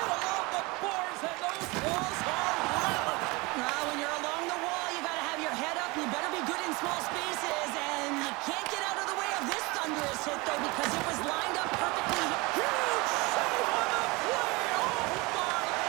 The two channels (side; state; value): left; quieter; 25.0 dB